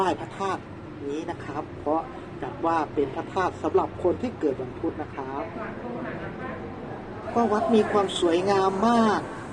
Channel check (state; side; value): identical; both; correlation 1.00